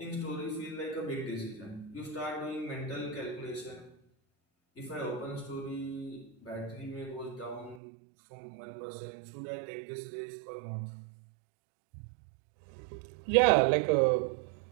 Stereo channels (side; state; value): left; drops out; at 7.8 s